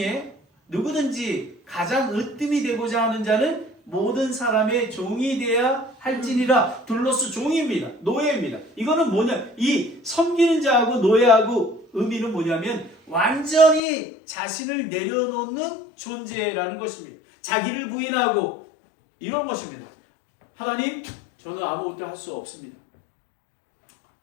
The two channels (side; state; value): right; drops out; at 13.8 s